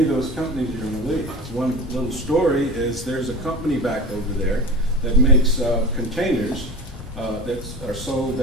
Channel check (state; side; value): normal; both; correlation 0.31